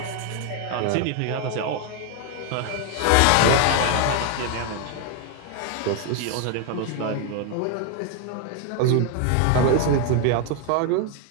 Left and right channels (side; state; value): both; different; correlation 0.01